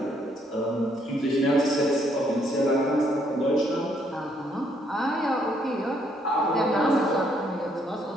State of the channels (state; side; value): normal; both; correlation 0.70